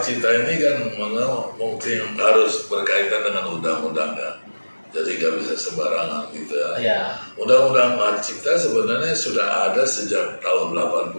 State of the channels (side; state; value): both; inverted; correlation -1.00